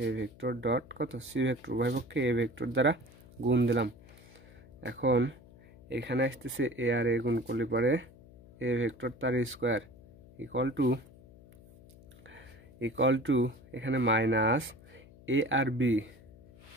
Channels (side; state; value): left; noise; hum, 22 dB below the sound